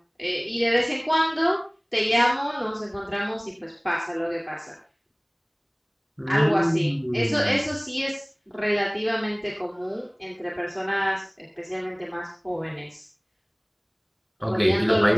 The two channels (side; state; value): both; identical; correlation 1.00